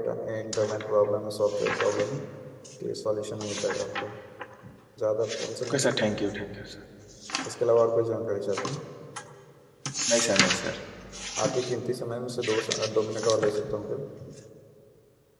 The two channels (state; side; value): identical; both; correlation 1.00